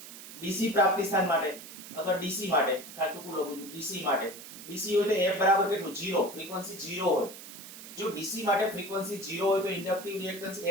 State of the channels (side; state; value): right; noise; hiss, 14 dB below the sound